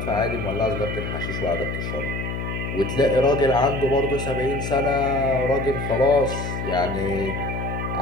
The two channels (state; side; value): noise; left; hum, 4 dB below the sound